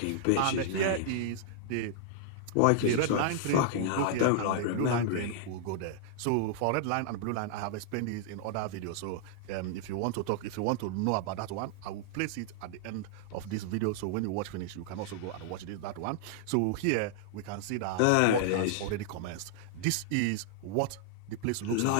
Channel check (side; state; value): both; different; correlation -0.01